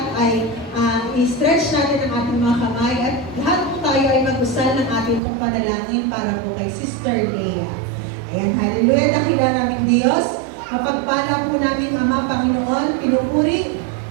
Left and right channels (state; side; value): drops out; left; at 5.2 s